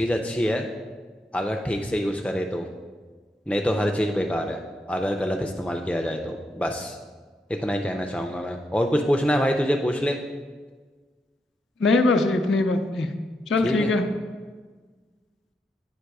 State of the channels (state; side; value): normal; both; correlation 0.81